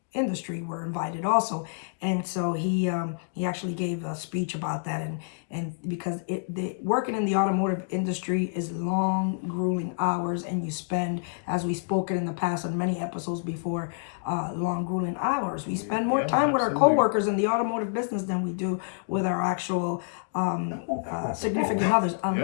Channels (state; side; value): silent; right; digital silence